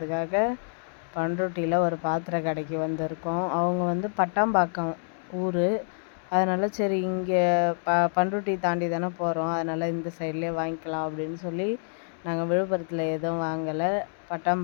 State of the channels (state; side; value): silent; right; digital silence